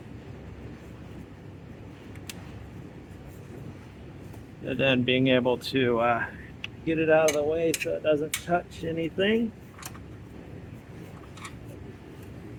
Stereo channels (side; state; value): both; identical; correlation 1.00